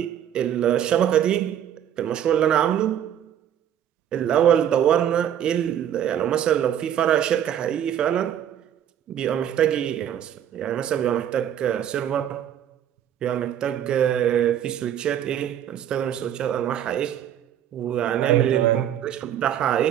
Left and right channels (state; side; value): quieter; left; 10.1 dB